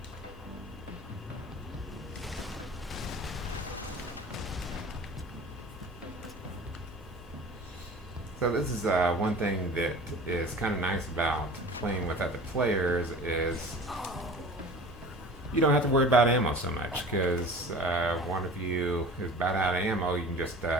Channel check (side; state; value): both; normal; correlation 0.40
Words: So this is one thing that is kind of nice about playing with other players is you don't have to worry about ammo so much, because one of you is about out of ammo, you can just